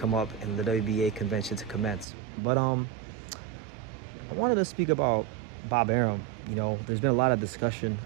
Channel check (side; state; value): left; drops out; at 2.1 s